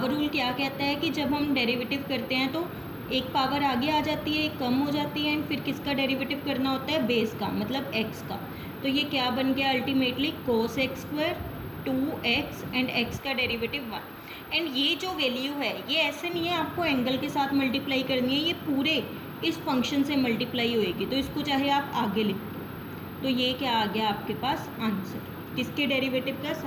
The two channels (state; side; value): identical; both; correlation 1.00